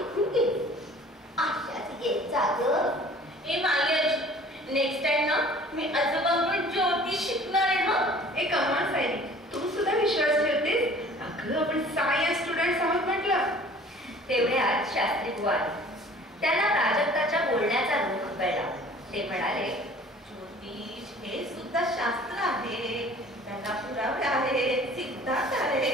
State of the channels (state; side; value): normal; both; correlation 0.49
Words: गेले. अशाच येत जा गं. ए माई, नेक्स्ट टाइम ना मी आजोबांकडून ज्योतिष शिकणार आहे. हं. ए कमाल सायली, तू सुद्धा विश्वास ठेवतेस? अगं आपण सायन्स स्टुडंट्स आहोत म्हटलं. तेवढ्यात शास्त्री बुवा आले. त्यांना प्राजक्ताच्या बोलण्याचा रूप कळला. ते म्हणाले, ज्योतिष हे सुद्धा शास्त्र आहे, त्याला पुरावे आहेत, सिद्धांत